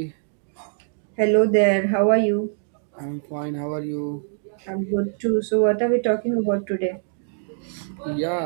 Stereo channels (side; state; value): left; silent; digital silence